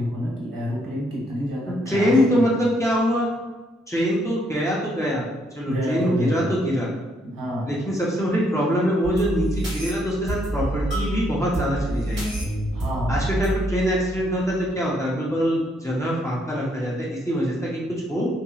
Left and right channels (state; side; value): normal; both; correlation 0.72